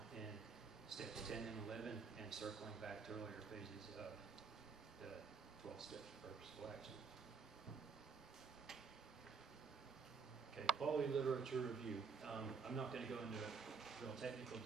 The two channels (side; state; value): left; quieter; 5.2 dB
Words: in steps 10 and 11 and circling back to earlier phases of the 12 steps of purposeful action. Okay, quality literature review. I'm not going to go into real technical